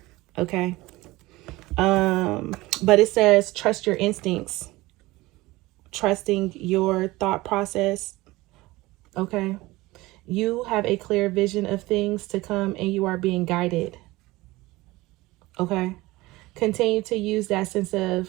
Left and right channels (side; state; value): left; quieter; 20.0 dB